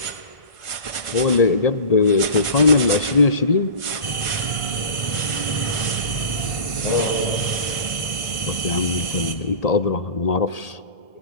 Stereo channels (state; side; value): late; right; 1.5 ms